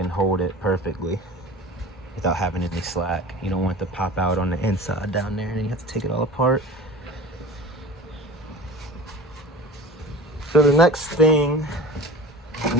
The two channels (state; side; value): normal; both; correlation 0.37